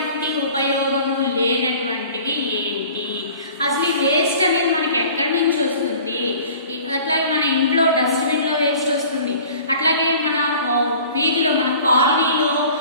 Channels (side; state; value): both; inverted; correlation -0.46